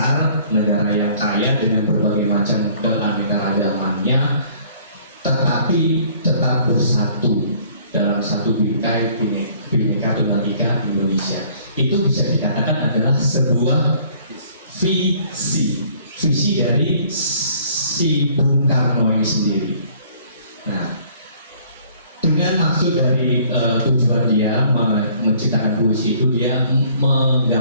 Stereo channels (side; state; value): both; inverted; correlation -0.57